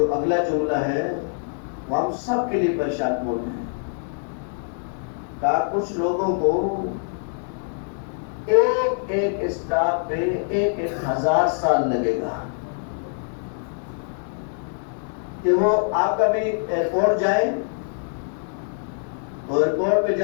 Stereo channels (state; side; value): silent; right; 62 dB below the other